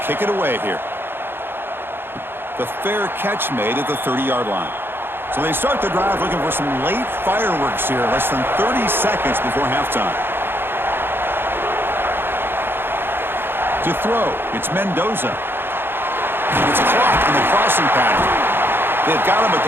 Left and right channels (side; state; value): left; late; 0.10 ms